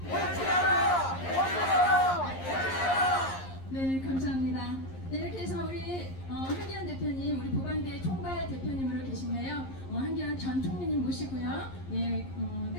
네, 감사합니다. 네, 이렇게 해서 우리 한기현 대표님, 우리 보방대 총괄 대표님으로 계신데요. 한기현 전 총리님 모시고요.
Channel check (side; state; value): right; late; 11 ms